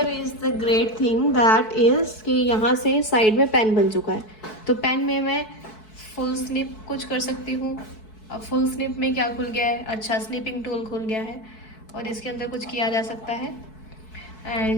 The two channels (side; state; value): right; late; 4.6 ms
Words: is the great thing that is कि यहाँ से साइड में पेन बन चुका है। तो पेन में मैं फुल स्निप कुछ कर सकती हूँ। अब फुल स्निप में क्या खुल गया है, अच्छा स्निपिंग टूल खुल गया है और इसके अंदर कुछ किया जा सकता है।